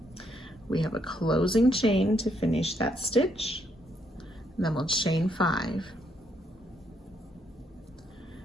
We have a closing chain to finish that stitch, and then we'll chain 5.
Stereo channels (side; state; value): both; normal; correlation 0.74